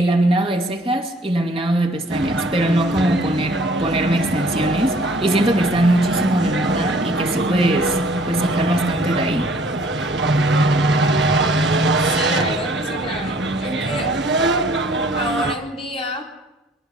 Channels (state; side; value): normal; both; correlation 0.57